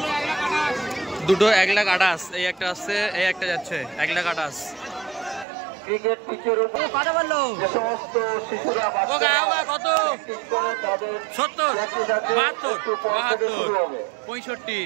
দুটো 1,28,000। এই একটা আসছে, এই একটা যাচ্ছে 1,28,000। ক্রিকেট পিচের উপর কথা বললো যে সমস্ত শিশুরা কত 70 72 65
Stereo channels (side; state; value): left; drops out; at 5.5 s